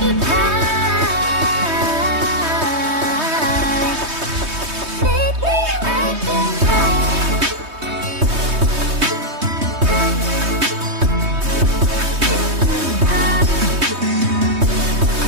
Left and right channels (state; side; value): late; left; 3.2 ms